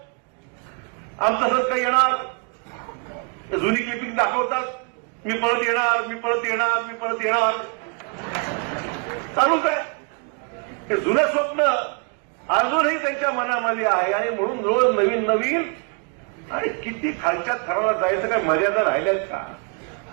आमचं सरकार येणार, जुनी क्लिपिंग दाखवतात, मी परत येणार, मी परत येणार, मी परत येणार, चालूच आहे. हे जुनं स्वप्न अजूनही त्यांच्या मनामध्ये आहे. आणि म्हणून रोज नवीन नवीन आणि किती खालच्या थराला जायचं, काय मर्यादा राहिल्यात का?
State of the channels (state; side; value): quieter; left; 36.7 dB